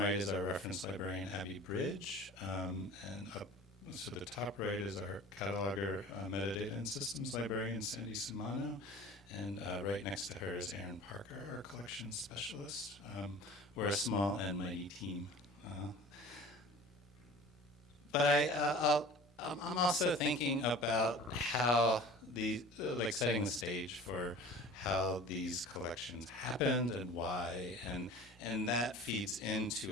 is our reference librarian, Abby Bridge, and up to the top right is our cataloger, metadata and systems librarian, Sandy Sumano. And right next to her is Aaron Parker, our collection specialist. We're a small and mighty team. But I'm also thinking about how setting the stage for how these collections happened and why, and that feeds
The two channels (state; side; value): normal; both; correlation 0.42